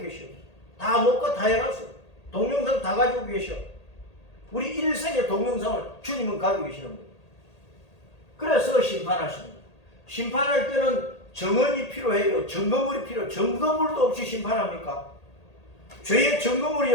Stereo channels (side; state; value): right; late; 1.8 ms